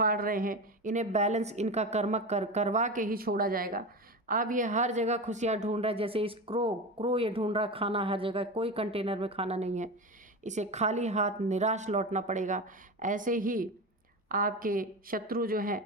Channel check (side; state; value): both; normal; correlation 0.24